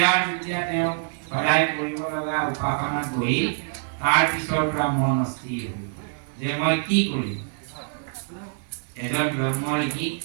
যেতিয়া তেওঁ সদায় কৰিব লগা উপাসনাত বহিল তাৰ পিছৰ পৰা মন অস্থিৰ হ'ল যে মই কি কৰিম এজন ব্ৰহ্ম ঋষি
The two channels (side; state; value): left; silent; 62 dB below the other